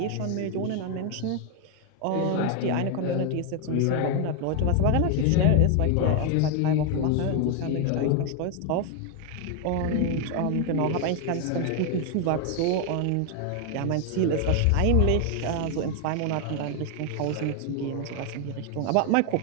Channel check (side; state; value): both; different; correlation 0.00